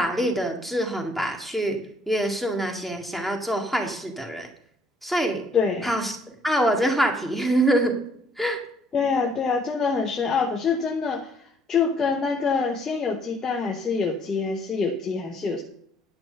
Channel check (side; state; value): both; normal; correlation 0.64